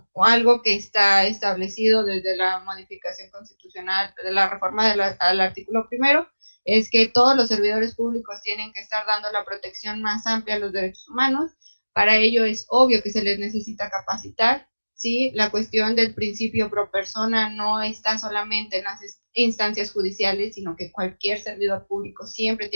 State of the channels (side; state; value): both; inverted; correlation -1.00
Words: algo que está establecido desde la modificación constitucional de la reforma al artículo 1 es que todos los servidores públicos tienen que estar dando la protección más amplia a los derechos humanos. Para ello es obvio que se les necesita capacitar. ¿Sí? La cuestión del principio pro persona no está solamente en las instancias judiciales, sino que cualquier servidor público siempre